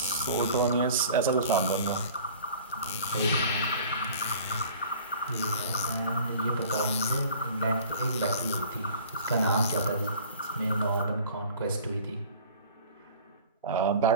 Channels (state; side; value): inverted; both; correlation -0.46